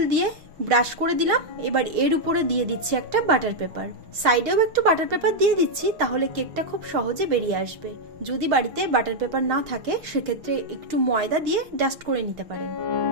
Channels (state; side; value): late; left; 6.5 ms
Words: দিয়ে ব্রাশ করে দিলাম। এবার এর উপরে দিয়ে দিচ্ছি একটা বাটার পেপার, সাইডেও একটু বাটার পেপার দিয়ে দিচ্ছি, তাহলে কেকটা খুব সহজে বেরিয়ে আসবে। যদি বাড়িতে বাটার পেপার না থাকে সেক্ষেত্রে একটু ময়দা দিয়ে ডাস্ট করে নিতে পারেন।